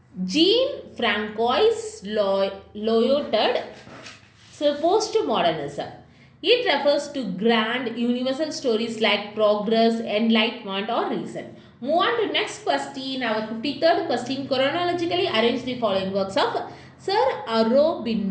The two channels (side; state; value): both; identical; correlation 1.00